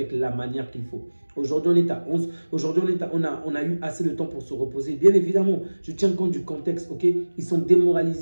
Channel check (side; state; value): both; inverted; correlation -1.00